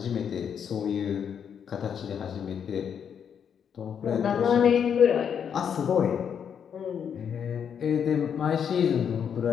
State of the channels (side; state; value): right; quieter; 7.8 dB